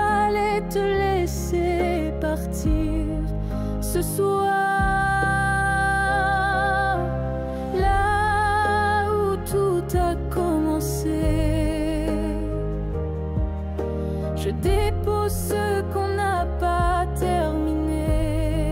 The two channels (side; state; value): both; identical; correlation 1.00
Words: te laisser partir ce soir. Là où tout a commencé, je dépose ce qu'on n'a pas